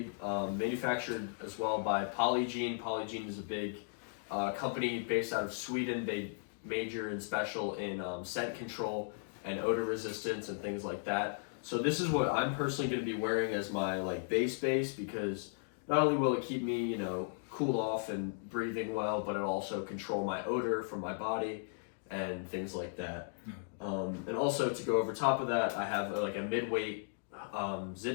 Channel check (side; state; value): right; silent; digital silence